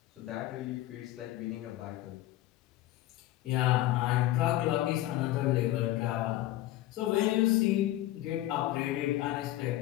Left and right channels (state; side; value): quieter; right; 15.3 dB